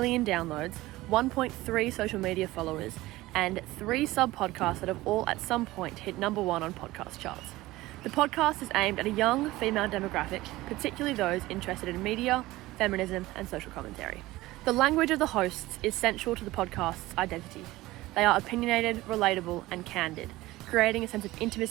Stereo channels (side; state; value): left; quieter; 18.3 dB